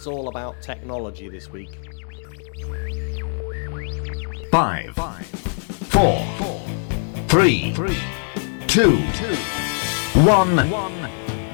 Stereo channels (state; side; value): silent; right; digital silence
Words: all about technology this week. 5, 4, 3, 2,